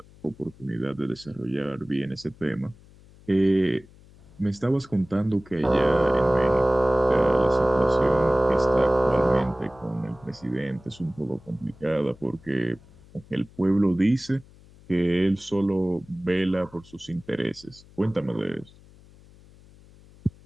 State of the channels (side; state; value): left; noise; hum, 24 dB below the sound